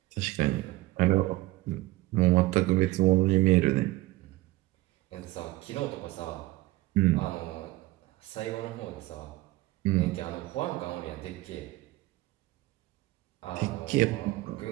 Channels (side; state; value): left; quieter; 18.5 dB